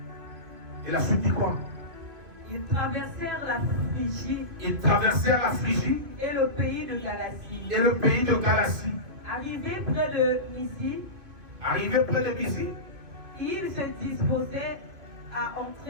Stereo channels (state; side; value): late; left; 2.5 ms